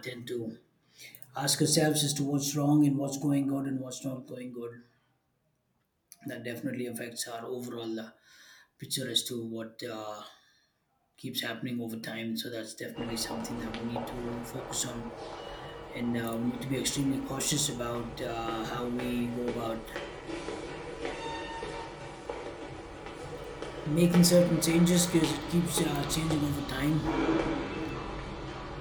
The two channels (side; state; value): both; identical; correlation 1.00